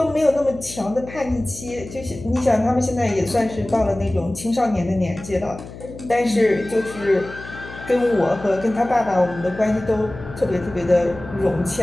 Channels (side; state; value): left; noise; hum, 14 dB below the sound